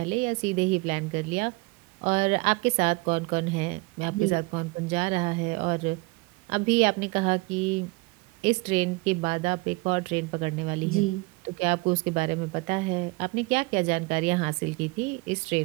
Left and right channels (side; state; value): left; quieter; 26.0 dB